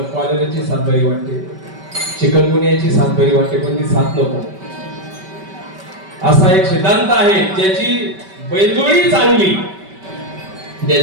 कॉलेराची साथ बरी वाटते, चिकनगुनियाची साथ बरी वाटते, पण ती साथ नको. असा एक सिद्धांत आहे. ज्याची बैलजोडी चांगली,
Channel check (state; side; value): late; left; 5.2 ms